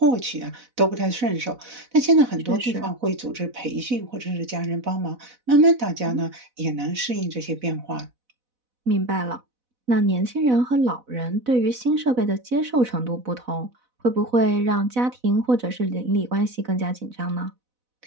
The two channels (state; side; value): late; left; 4.0 ms